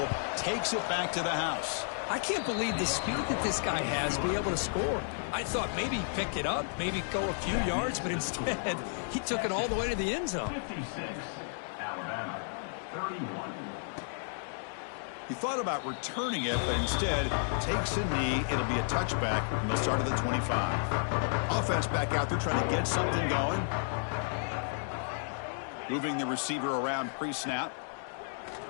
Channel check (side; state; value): right; silent; digital silence